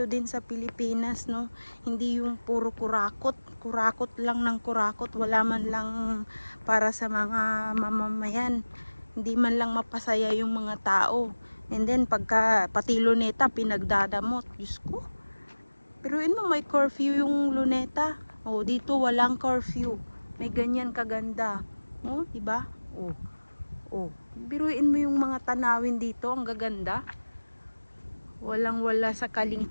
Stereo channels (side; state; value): both; inverted; correlation -1.00